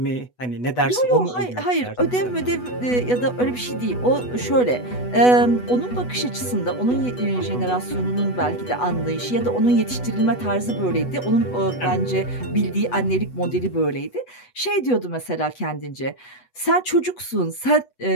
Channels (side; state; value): right; late; 8.1 ms